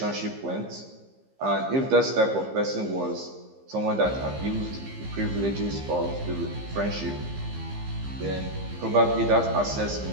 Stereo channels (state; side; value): late; left; 15 ms